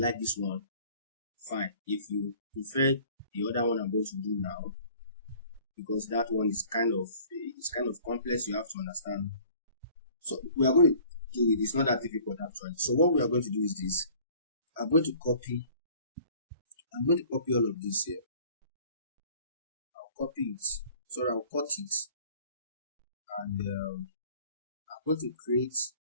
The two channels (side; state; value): both; inverted; correlation -0.51